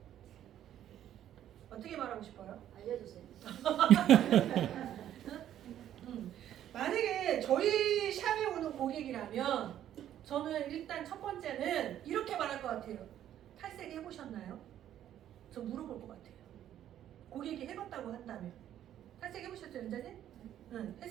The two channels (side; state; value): left; quieter; 11.2 dB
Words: 어떻게 말하고 싶어요? 알려주세요. 만약에 저희 샵에 오는 고객이라면 저는 일단 첫 번째는 이렇게 말할 것 같아요. 탈색 해보셨나요? 저 물어볼 것 같아요. 고객이 해봤다고 한다면. 탈색 해보셨죠, 연자님? 응.